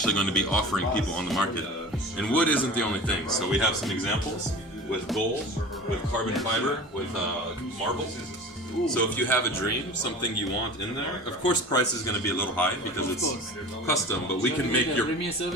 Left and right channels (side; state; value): both; normal; correlation 0.37